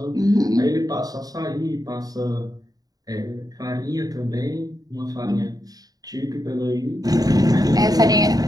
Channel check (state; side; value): late; left; 0.18 ms